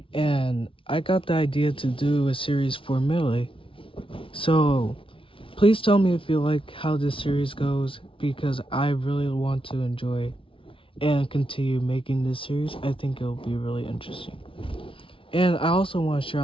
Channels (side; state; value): right; late; 0.25 ms